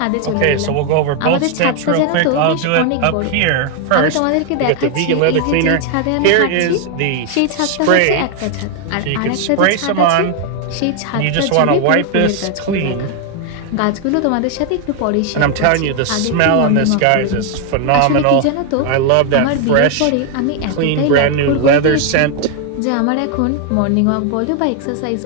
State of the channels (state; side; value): different; both; correlation 0.00